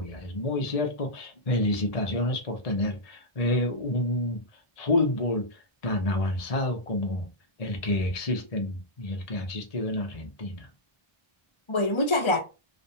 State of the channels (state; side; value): late; right; 1.3 ms